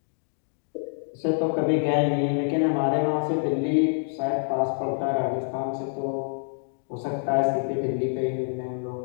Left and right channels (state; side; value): silent; right; digital silence